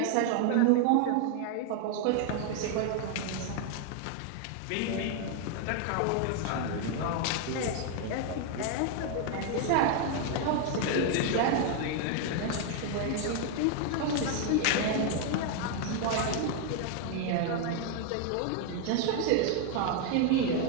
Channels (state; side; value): different; both; correlation 0.00